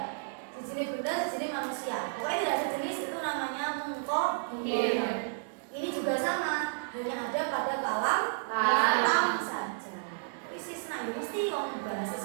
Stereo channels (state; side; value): silent; left; digital silence